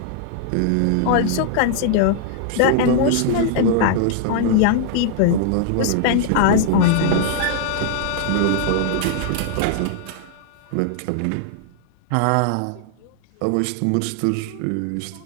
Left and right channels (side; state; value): both; different; correlation 0.00